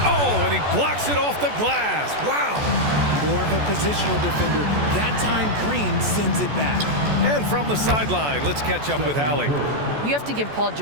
Oh, and he blocks it off the glass. Wow. more of a positional defender. That time, Green sends it back. And from the sideline, let's catch up with Allie. You have to give Paul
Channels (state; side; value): late; left; 14 ms